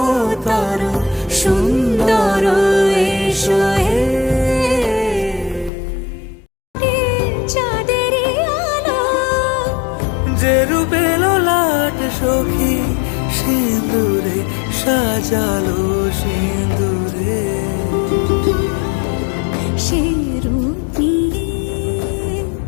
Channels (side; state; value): right; drops out; at 5.7 s